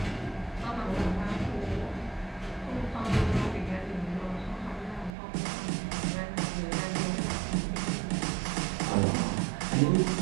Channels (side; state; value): left; drops out; at 5.1 s